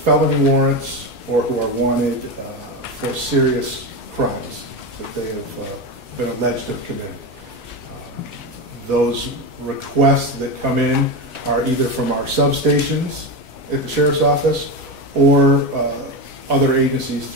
warrants or who are wanted for serious crimes that they have been alleged to have committed. Those requests that come in are either from our substations at the Sheriff's Office or other agencies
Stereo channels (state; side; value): normal; both; correlation 0.17